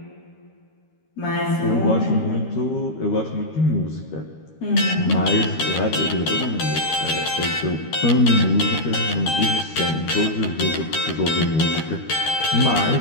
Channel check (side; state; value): right; late; 13 ms